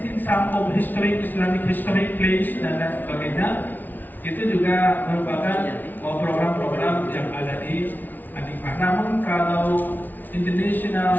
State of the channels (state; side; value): late; right; 0.084 ms